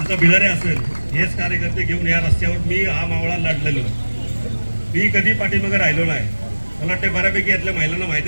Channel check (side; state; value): both; inverted; correlation -1.00